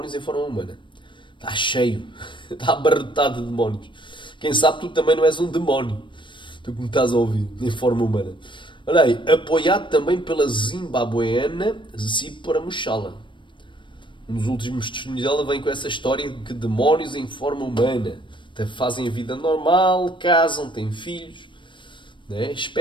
em forma humana. Está cheio. Está abarrotado de demónios. Quem sabe tu também não és um demónio. Tu que me estás a ouvir, em forma humana. Olha aí. Apoiado também pela zimbabueana Zípora Mushala. Um dos últimos testemunhos dela vem com essa história de que demónios em forma humana fazem a vida normal, casam, têm filhos. Né?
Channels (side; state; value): right; late; 0.24 ms